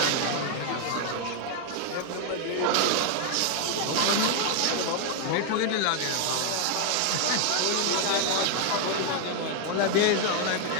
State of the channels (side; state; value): both; different; correlation 0.00